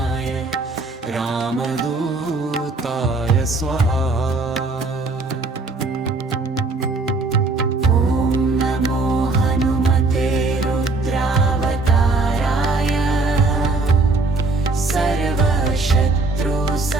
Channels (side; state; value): left; quieter; 3.4 dB